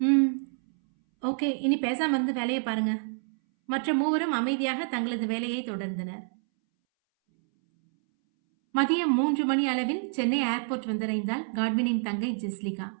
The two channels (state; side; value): silent; left; 60 dB below the other